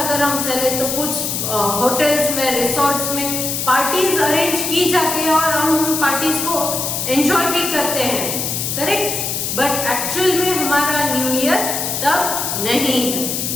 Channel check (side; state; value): left; noise; hiss, 2 dB below the sound